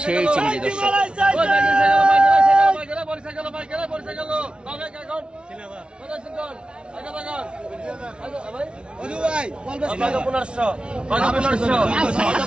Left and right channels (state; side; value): late; left; 0.056 ms